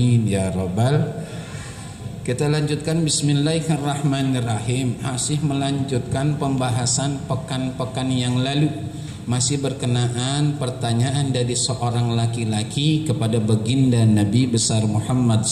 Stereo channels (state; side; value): identical; both; correlation 1.00